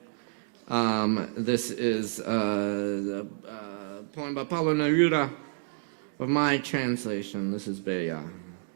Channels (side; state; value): left; silent; digital silence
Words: This is a poem by Pablo Neruda of my translation. This is Bella.